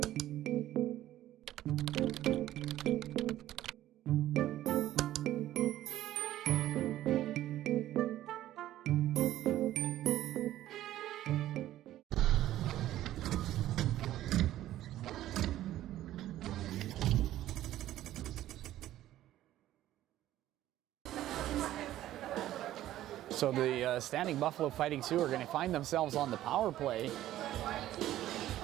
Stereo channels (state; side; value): quieter; left; 13.7 dB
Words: So the Standing Buffalo Fighting Sioux are going to find themselves on the power play.